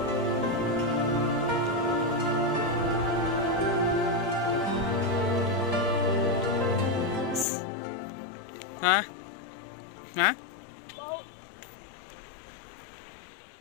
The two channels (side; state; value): right; drops out; at 7.5 s